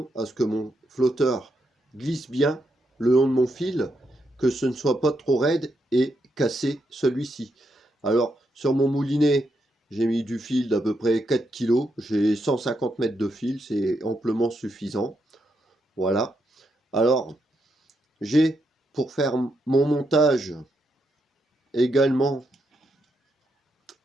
à ce que mon flotteur glisse bien le long de mon fil, que ce ne soit pas trop raide et casser celui-ci. Alors sur mon moulinet, j'ai mis du fil d'à peu près 4 kg, j'ai 150 mètres de fil, c'est amplement suffisant. Voilà. Alors j'ai, pour faire mon montage, également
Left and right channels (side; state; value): both; normal; correlation 0.81